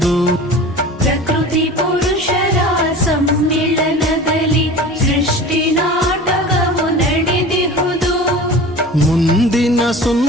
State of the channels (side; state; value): both; normal; correlation 0.37